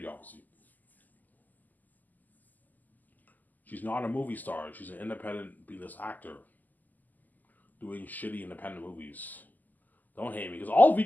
obviously. She's not a movie star. She's an independent B-list actor doing shitty independent movies. Don't hate me, because all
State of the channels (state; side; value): late; right; 0.083 ms